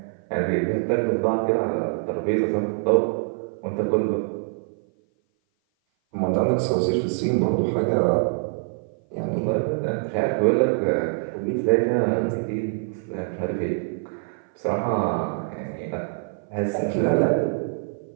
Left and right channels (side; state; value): left; silent; 56 dB below the other